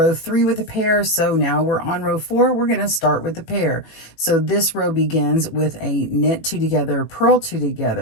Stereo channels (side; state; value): right; late; 18 ms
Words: 3 with a pair, so now we're on row 4. We're going to start with the pair. So this row begins with a knit 2 together, purl 2